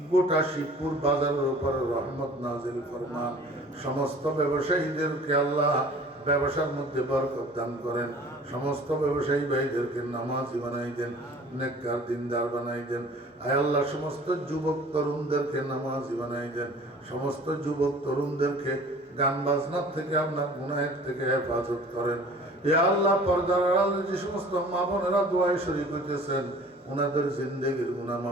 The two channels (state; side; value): normal; both; correlation 0.47